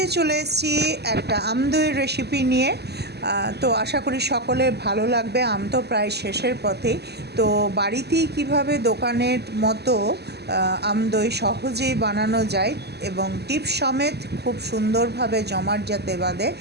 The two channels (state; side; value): late; left; 0.48 ms